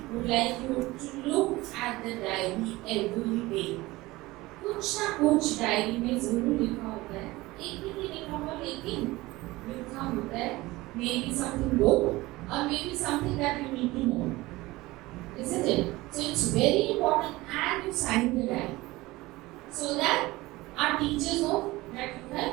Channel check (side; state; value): left; quieter; 19.8 dB